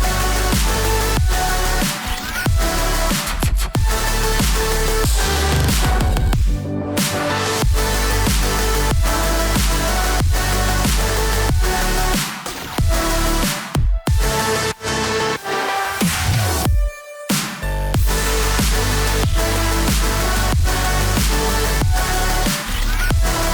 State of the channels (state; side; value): identical; both; correlation 1.00